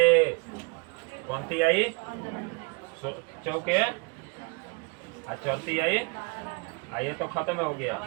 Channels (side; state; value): left; quieter; 31.9 dB